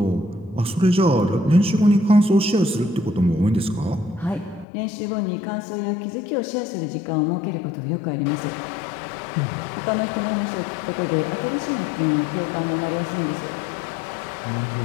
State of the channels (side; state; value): right; drops out; at 4.7 s